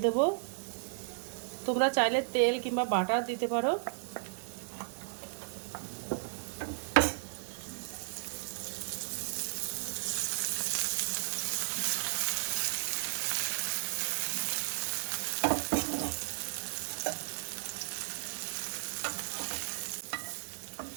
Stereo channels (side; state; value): left; silent; digital silence